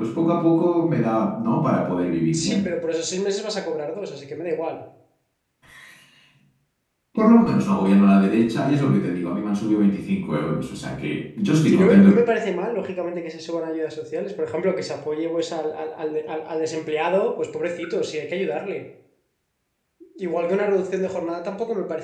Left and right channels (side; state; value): both; identical; correlation 1.00